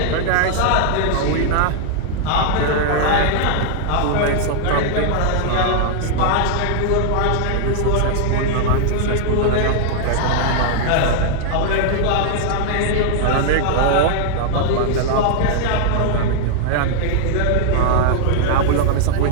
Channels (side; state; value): both; different; correlation -0.01